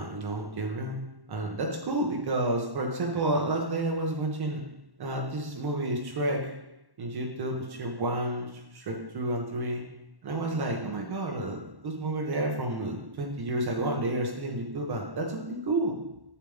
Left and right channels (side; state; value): left; late; 1.1 ms